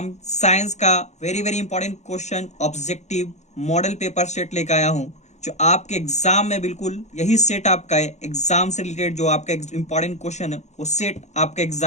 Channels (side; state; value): right; late; 0.33 ms